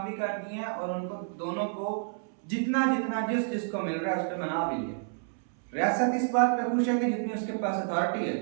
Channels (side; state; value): left; silent; 58 dB below the other